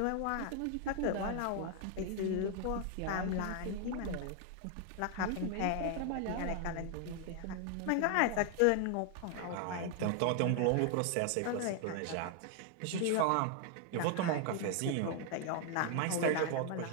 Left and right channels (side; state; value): both; different; correlation 0.00